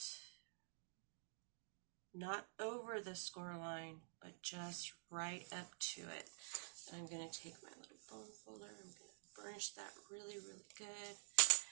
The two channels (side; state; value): left; silent; digital silence